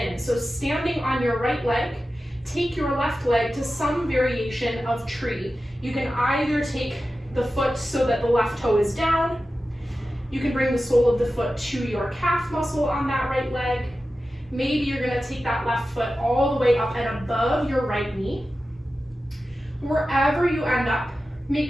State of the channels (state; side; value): normal; both; correlation 0.93